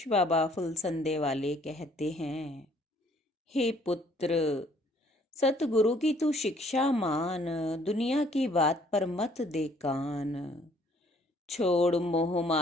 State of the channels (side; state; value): both; normal; correlation 0.61